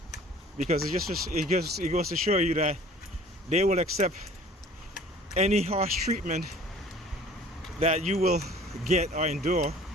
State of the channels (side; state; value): both; normal; correlation 0.49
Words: Because it goes to show you that they will accept any harsh treatment that you will get or endure,